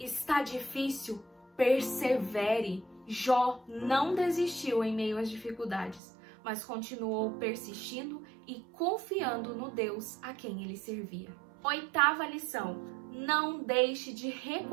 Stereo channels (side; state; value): left; drops out; at 6.0 s